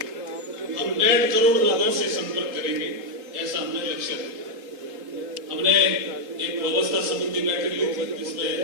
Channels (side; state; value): left; late; 3.7 ms